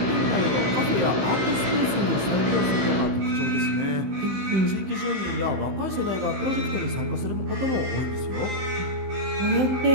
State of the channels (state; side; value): late; left; 15 ms